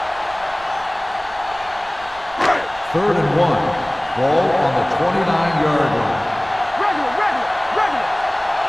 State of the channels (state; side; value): noise; right; rumble, 22 dB below the sound